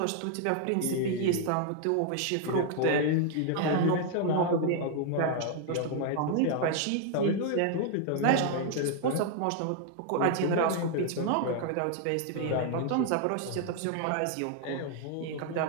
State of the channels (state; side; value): different; both; correlation 0.00